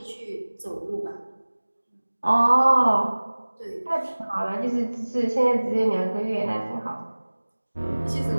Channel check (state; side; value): inverted; both; correlation -1.00